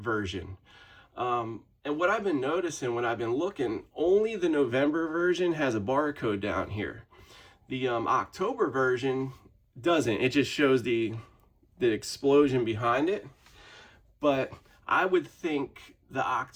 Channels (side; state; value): both; identical; correlation 1.00